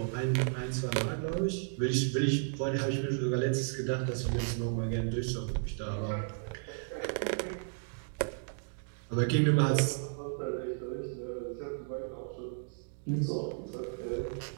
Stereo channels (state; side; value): silent; left; digital silence